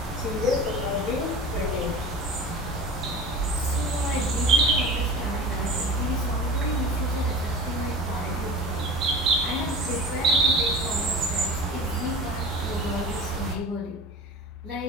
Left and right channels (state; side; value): normal; both; correlation 0.36